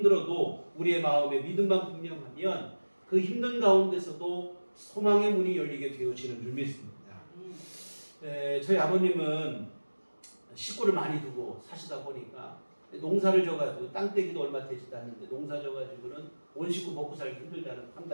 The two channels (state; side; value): inverted; both; correlation -1.00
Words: 우리의 마음에 믿음만 분명하면 그 힘든 가운데서도 소망의 문이 열리게 되어지는 줄 믿습니다. 저희 아버님은 식구를 많이 두고 사시다 보니까 농사를 져가지고 땅떼기도 얼마 되지도 않는데 농사 져가지고는 온 식구 먹고 살기 힘들다는